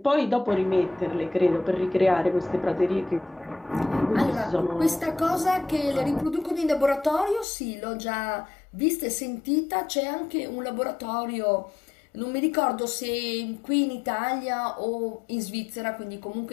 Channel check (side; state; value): right; drops out; at 7.5 s